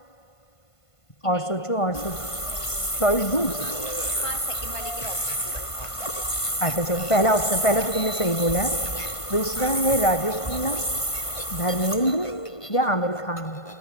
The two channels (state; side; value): late; right; 1.5 ms